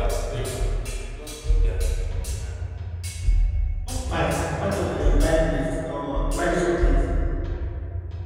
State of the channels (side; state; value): both; identical; correlation 1.00